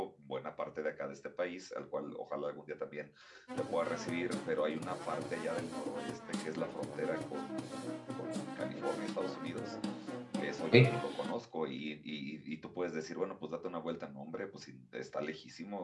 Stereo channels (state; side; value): identical; both; correlation 1.00